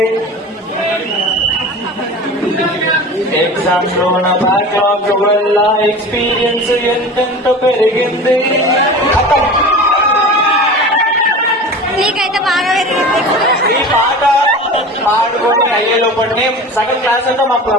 exams లో నా backlog వల్ల ఎక్స్పీరియన్స్ ఎంతెంత పెరిగింది. నీకైతే బాగా పెరిగింది. ఈ పాట పాడుకొని అయ్యే లోపలనే సగం క్లాస్ అంతా మా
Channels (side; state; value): both; normal; correlation 0.35